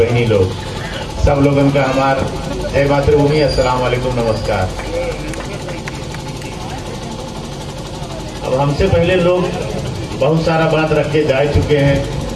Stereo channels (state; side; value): identical; both; correlation 1.00